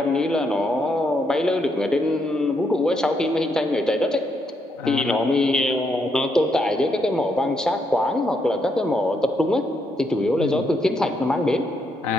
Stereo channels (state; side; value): normal; both; correlation 0.77